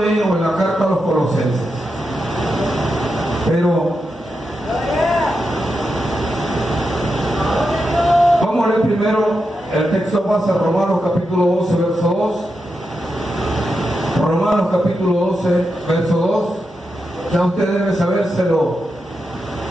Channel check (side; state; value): both; normal; correlation 0.87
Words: en la carta a los Colosenses, pero vamos a leer primero el texto base, Romanos capítulo 12, verso 2. Romanos capítulo 12, verso 2. Ya usted debe sabérselo